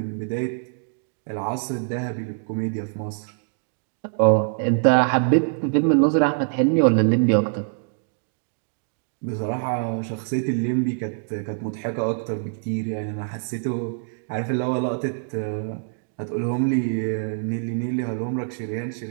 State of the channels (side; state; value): left; silent; digital silence